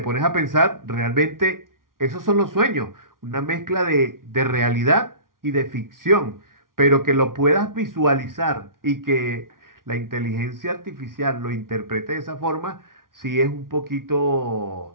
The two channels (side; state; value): left; late; 0.91 ms